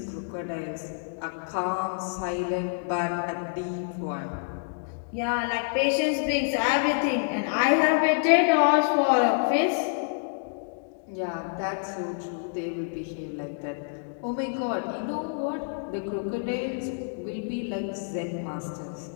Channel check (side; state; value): right; silent; digital silence